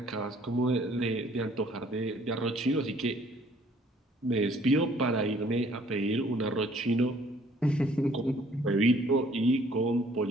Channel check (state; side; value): normal; both; correlation 0.59